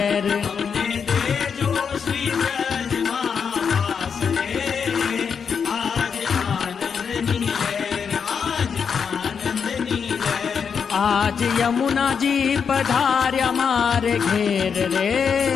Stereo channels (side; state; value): right; quieter; 6.5 dB